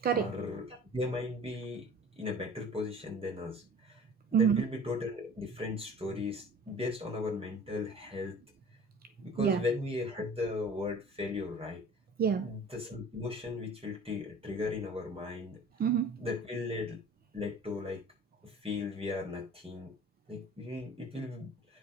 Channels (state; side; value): normal; both; correlation 0.45